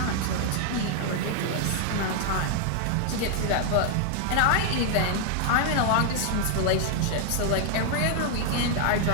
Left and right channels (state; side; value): different; both; correlation 0.00